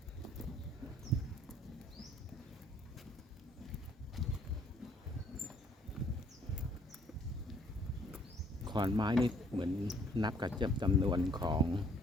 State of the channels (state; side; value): normal; both; correlation 0.62